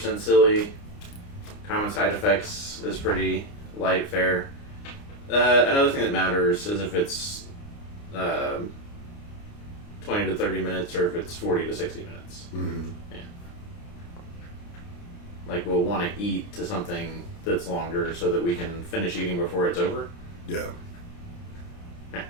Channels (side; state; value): right; late; 29 ms